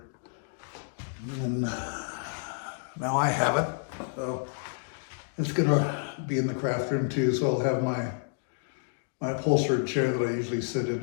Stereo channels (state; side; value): silent; right; digital silence